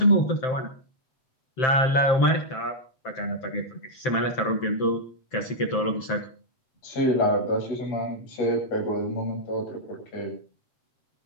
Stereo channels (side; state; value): right; late; 7.7 ms